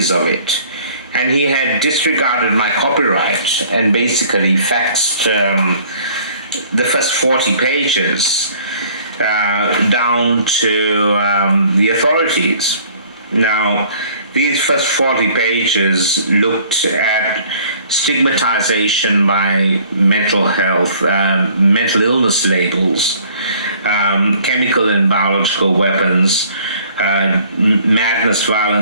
of it, and he had disregarded my copyright and basically faxed the first 40 pages down to the authorities. Now, these first 40 pages looked at stigmatization by mental health, mental illness labels, chemical and biological weapons, madness,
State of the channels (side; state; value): both; inverted; correlation -0.55